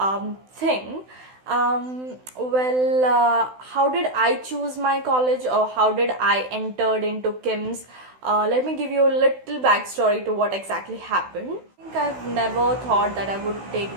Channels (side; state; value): left; late; 16 ms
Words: thing. How did I choose my college, or how did I entered into KIMS? Let me give you a little backstory to what exactly happened. I think I've never thought that I would take